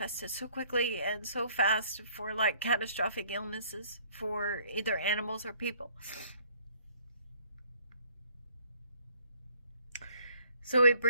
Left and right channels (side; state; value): both; inverted; correlation -0.61